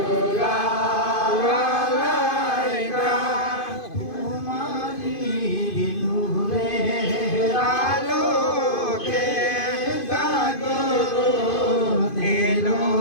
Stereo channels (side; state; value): right; late; 2.5 ms